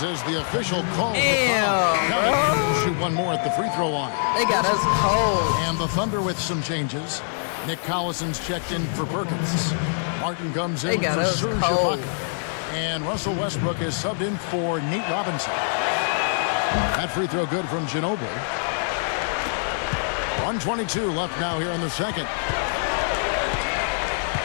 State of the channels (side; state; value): right; silent; digital silence